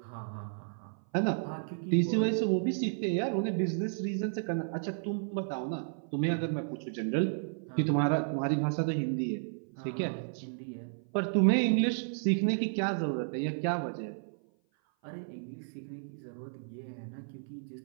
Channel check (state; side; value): silent; left; 55 dB below the other